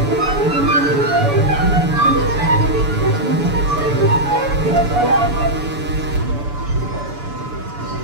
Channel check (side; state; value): left; late; 6.9 ms